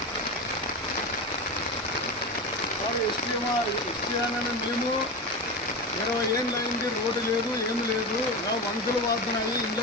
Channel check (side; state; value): both; normal; correlation 0.22